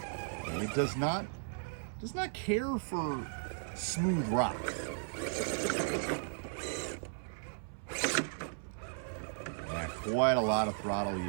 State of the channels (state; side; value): silent; left; 54 dB below the other